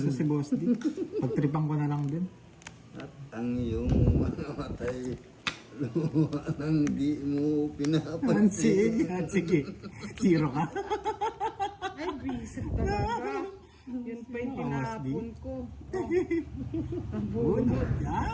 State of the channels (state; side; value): identical; both; correlation 1.00